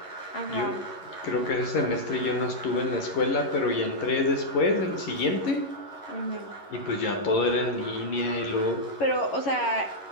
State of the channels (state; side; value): late; right; 11 ms